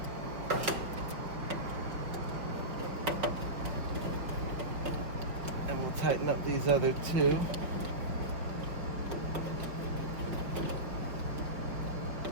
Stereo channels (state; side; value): late; left; 5.4 ms